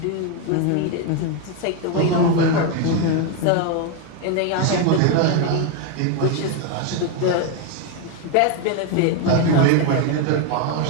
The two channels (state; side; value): different; both; correlation 0.02